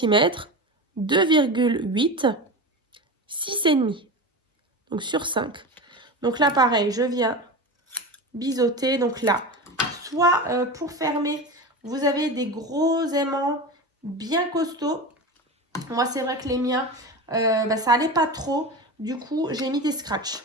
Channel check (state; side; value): normal; both; correlation 0.26